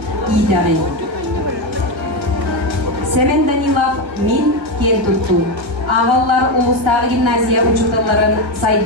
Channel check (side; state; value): left; late; 1.4 ms